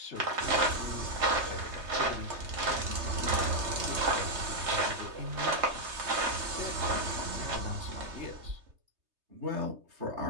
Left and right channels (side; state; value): left; late; 3.3 ms